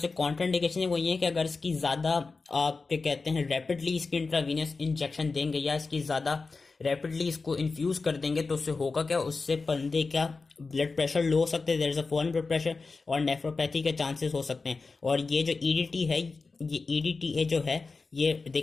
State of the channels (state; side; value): quieter; right; 4.1 dB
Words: कॉन्ट्राइंडिकेशन है वो ये है कि अगर इसकी ज्यादा आप क्या कहते हैं रैपिडली इसकी इंट्रावीनस इंजेक्शन देंगे या इसकी ज्यादा रैपिडली इसको इन्फ्यूज कर देंगे तो उससे होगा क्या, उससे बंदे का ब्लड प्रेशर लो हो सकते हैं, there is a fallen blood pressure और नेफ्रोपैथी के चांसेस हो सकते हैं। और ये जो EDT है, ये EDTA जो है ये